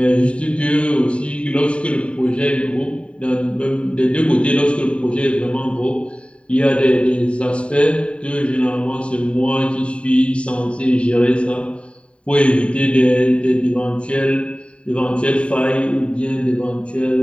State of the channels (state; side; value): late; right; 0.060 ms